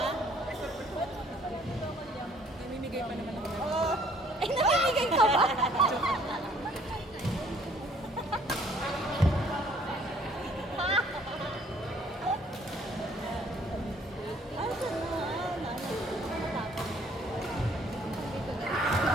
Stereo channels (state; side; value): normal; both; correlation 0.60